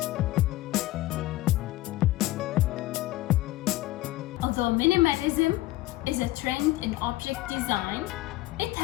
Although minimalism is a trend in object design, it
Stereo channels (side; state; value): right; quieter; 17.1 dB